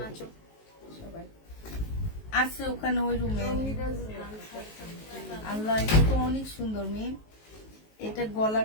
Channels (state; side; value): late; right; 19 ms